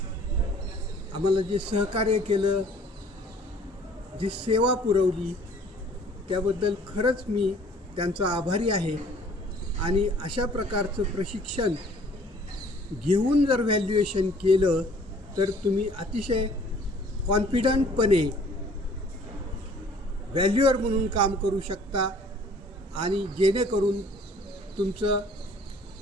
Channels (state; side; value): normal; both; correlation 0.55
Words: आम्हाला जे सहकार्य केलं, जी सेवा पुरवली, त्याबद्दल खरंच मी त्यांचा आभारी आहे. आणि अशा प्रकारचं प्रशिक्षण घेऊन जर व्हॅल्युएशन केलं तर तुम्ही अतिशय कॉन्फिडंटपणे व्हॅल्युअर म्हणून काम करू शकता आणि जेणेकरून तुमचं